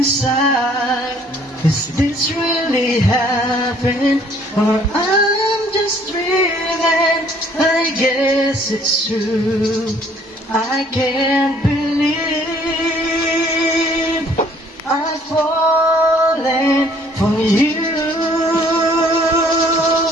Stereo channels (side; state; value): both; normal; correlation 0.59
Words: Is this really happened, or I'm just dreaming? I guess it's true. I can't believe I've fallen for you.